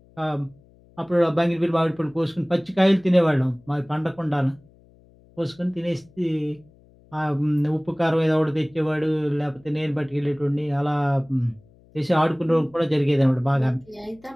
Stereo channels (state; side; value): noise; left; hum, 28 dB below the sound